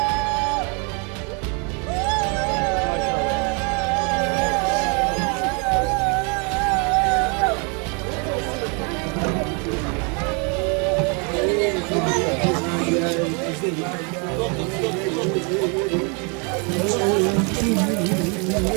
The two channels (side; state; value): left; quieter; 34.9 dB